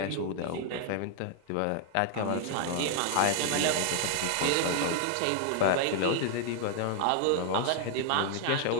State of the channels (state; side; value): different; both; correlation 0.00